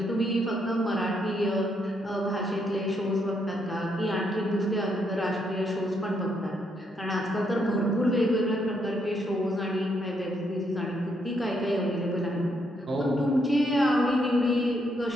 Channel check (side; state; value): both; normal; correlation 0.76